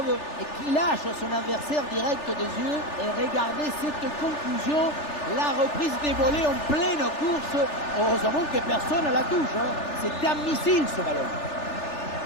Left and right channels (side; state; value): right; late; 3.4 ms